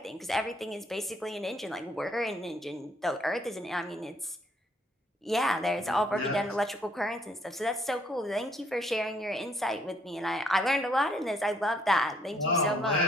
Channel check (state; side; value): normal; both; correlation 0.67